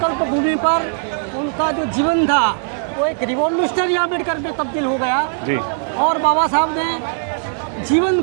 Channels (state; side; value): silent; left; 65 dB below the other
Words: भूमि पर उनका जो जीवन था वो एक रिवॉल्यूशनरी अम्बेडकर में तब्दील हो गया। और बाबा साहब ने जीवन